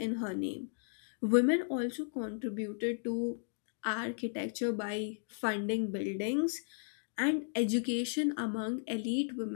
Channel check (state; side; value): silent; right; digital silence